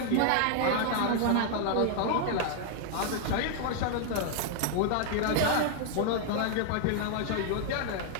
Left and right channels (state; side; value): different; both; correlation 0.00